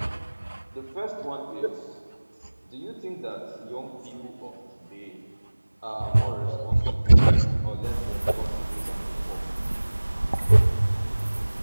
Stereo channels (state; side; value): inverted; both; correlation -1.00